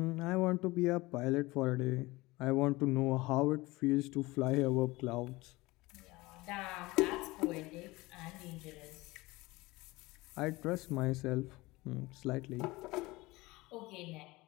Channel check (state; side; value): quieter; right; 21.3 dB